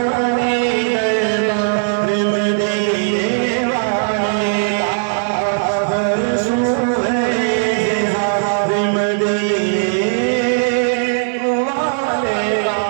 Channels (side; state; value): left; silent; 68 dB below the other